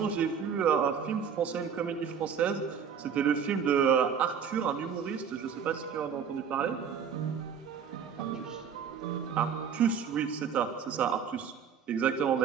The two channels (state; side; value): quieter; left; 7.2 dB